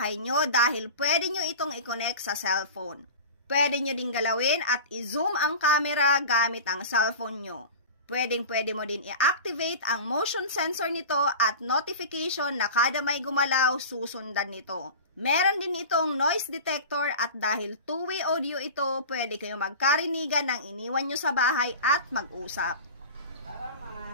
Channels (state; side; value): inverted; both; correlation -0.32